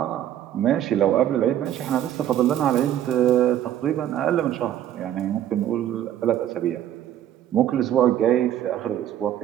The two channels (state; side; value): quieter; left; 11.3 dB